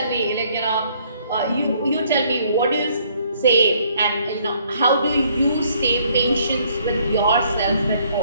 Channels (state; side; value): inverted; both; correlation -0.65